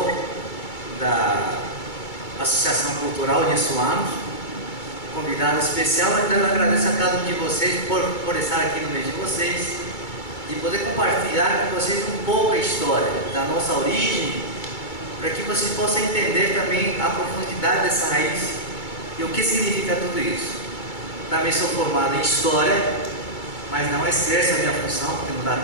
da Associação Cultural Insuanos, convidado especial. Então eu agradeço a cada um de vocês por estar aqui no meio de vocês e poder compartilhar com vocês um pouco a história da nossa origem, para que vocês possam entender também a profundidade dessa raiz e o que significa tudo isso. Também sou formado em História, mas não exerço a minha função, porque não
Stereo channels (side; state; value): right; late; 2.3 ms